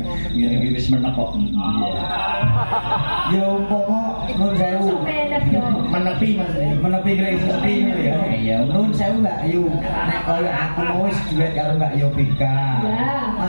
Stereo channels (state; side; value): inverted; both; correlation -1.00